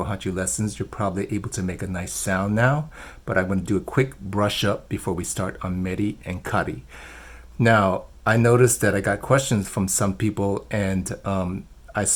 lessons, you're probably able to make a nice sound now, but I'm going to do a quick brush up before we start on Meri and Kari. Now, I noticed that I got questions from some people, and I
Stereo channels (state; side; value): identical; both; correlation 1.00